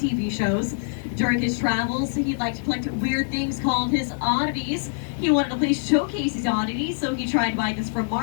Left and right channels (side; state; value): right; silent; 56 dB below the other